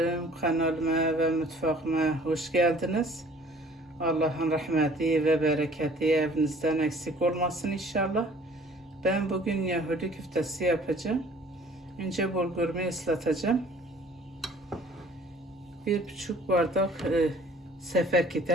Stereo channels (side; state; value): both; normal; correlation 0.53